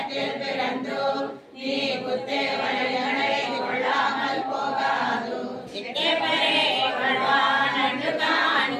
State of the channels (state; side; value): identical; both; correlation 1.00